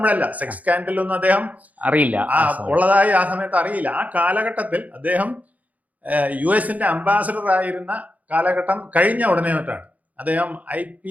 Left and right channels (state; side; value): late; left; 0.074 ms